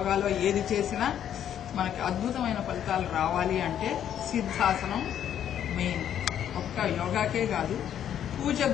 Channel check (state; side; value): quieter; right; 10.0 dB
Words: ఏది చేసినా మనకి అద్భుతమైన ఫలితాలు రావాలి అంటే సిద్ధాసనం మెయిన్. ఒక్క యోగాకే కాదు,